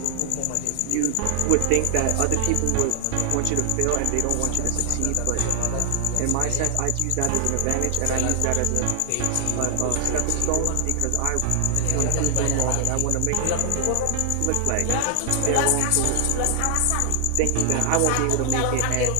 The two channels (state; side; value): different; both; correlation 0.00